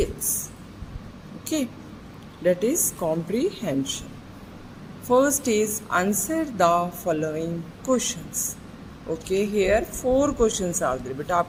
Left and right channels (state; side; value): identical; both; correlation 1.00